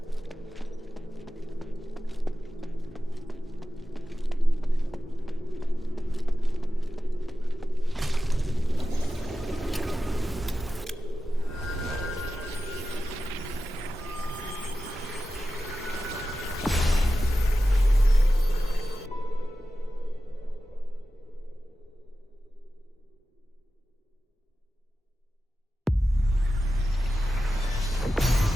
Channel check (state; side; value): normal; both; correlation 0.93